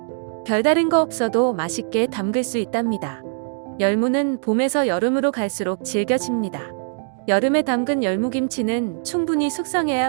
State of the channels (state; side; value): silent; left; digital silence